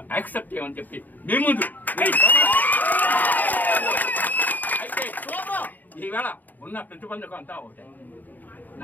యాక్సెప్ట్ చేయమని చెప్పి మీ ముందు అయితే ఈవేళ ఉన్న ప్రతిబంధకం అంతా ఒకటే.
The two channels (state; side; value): late; right; 0.085 ms